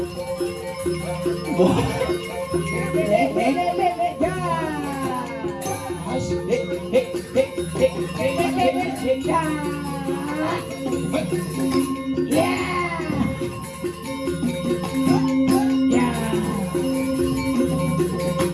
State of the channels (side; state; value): both; identical; correlation 1.00